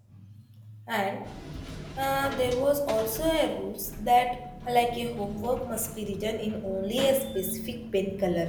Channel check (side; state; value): both; identical; correlation 1.00